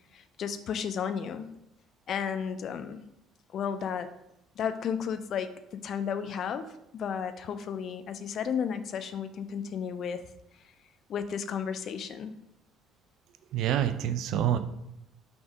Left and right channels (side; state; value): both; normal; correlation 0.50